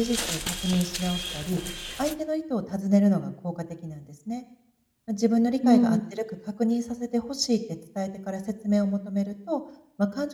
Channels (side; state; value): both; identical; correlation 1.00